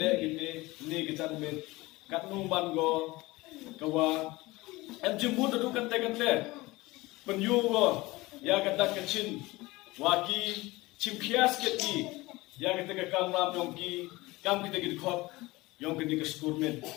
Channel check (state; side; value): quieter; right; 20.9 dB